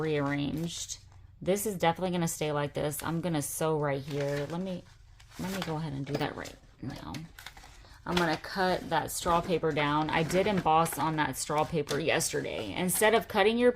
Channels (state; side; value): identical; both; correlation 1.00